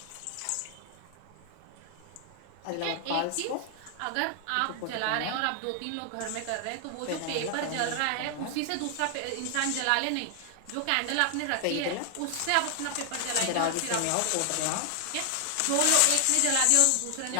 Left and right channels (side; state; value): both; different; correlation 0.00